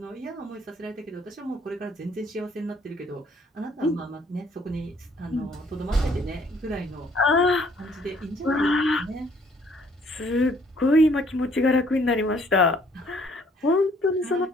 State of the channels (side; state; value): both; normal; correlation 0.62